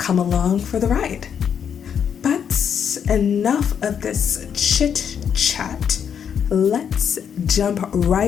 along for the ride. But enough of this chit chat. Let's jump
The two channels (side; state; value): right; quieter; 7.8 dB